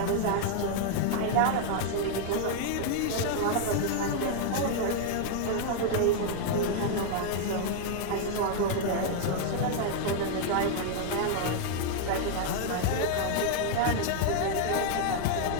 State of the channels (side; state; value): both; different; correlation 0.00